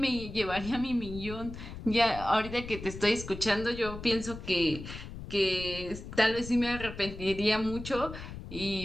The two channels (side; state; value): left; noise; rumble, 11 dB below the sound